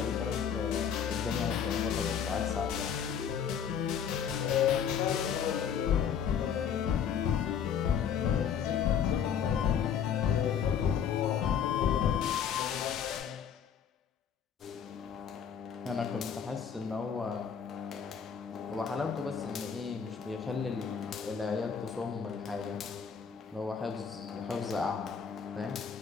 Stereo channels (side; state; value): right; quieter; 7.6 dB